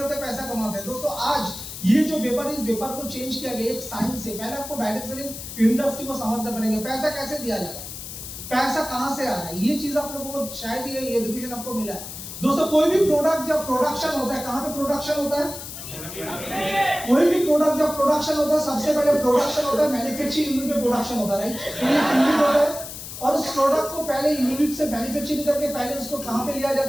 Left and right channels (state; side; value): noise; left; hiss, 10 dB below the sound